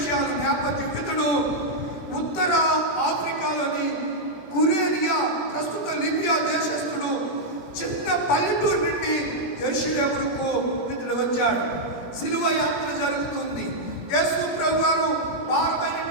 నేపథ్యం. ఇతడు ఉత్తర ఆఫ్రికాలోని కురేనియా, ప్రస్తుత లిబియా దేశస్థుడు. చిన్న పల్లెటూరు నుండి యెరూషలేముకు ఇతడు వచ్చాడు. సిలువ యాత్ర జరుగుతుంది. యేసు ప్రభువారు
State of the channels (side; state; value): right; late; 17 ms